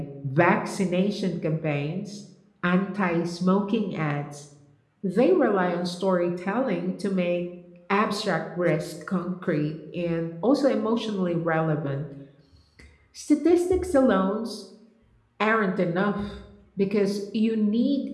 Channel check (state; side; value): identical; both; correlation 1.00